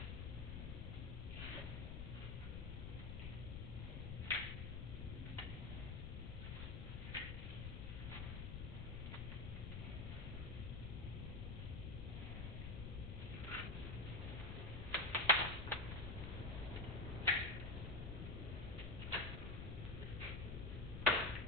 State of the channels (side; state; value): left; noise; rumble, 4 dB below the sound